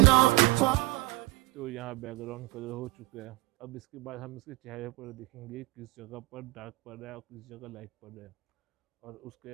तो यहाँ बैकग्राउंड कलर हो चुका है। अब इसके बाद हम इसके चेहरे पर देखेंगे किस जगह पर डार्क पड़ रहा है और किस जगह लाइट पड़ रहा है, और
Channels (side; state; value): left; quieter; 20.9 dB